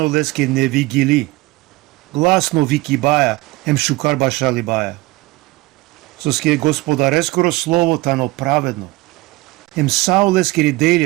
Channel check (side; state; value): left; quieter; 20.7 dB